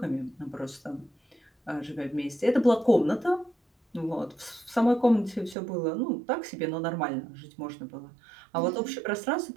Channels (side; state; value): left; drops out; at 5.6 s